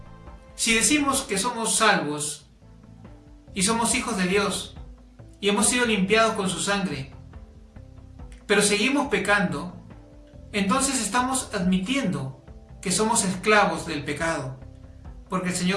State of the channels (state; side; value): identical; both; correlation 1.00